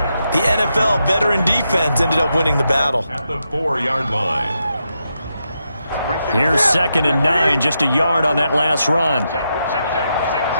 the NFL veteran defense ended up winning the battle. At the 4-yard line. Here's 2nd and 9, just a yard on that last run.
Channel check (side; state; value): both; inverted; correlation -0.84